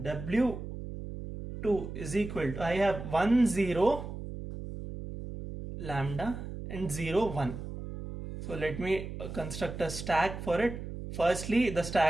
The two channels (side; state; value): right; noise; hum, 8 dB below the sound